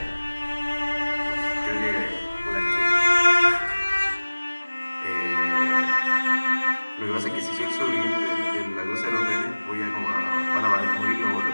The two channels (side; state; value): both; inverted; correlation -1.00